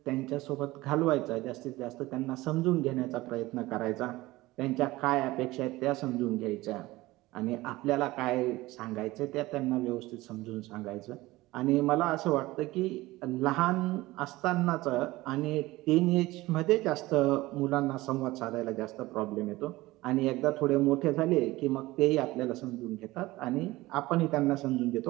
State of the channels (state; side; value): quieter; left; 19.0 dB